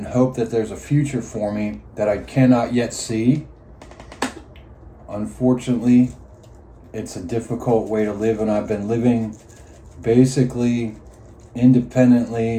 hope that there's a future for me that I cannot yet see. Unfortunately, it's a difficult way to live, and I've been living basically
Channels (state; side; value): identical; both; correlation 1.00